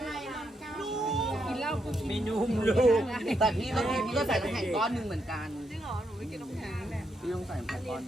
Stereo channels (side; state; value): both; normal; correlation 0.80